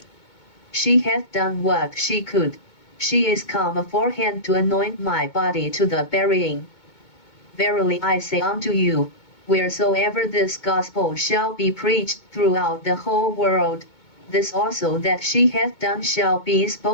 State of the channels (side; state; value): right; late; 2.2 ms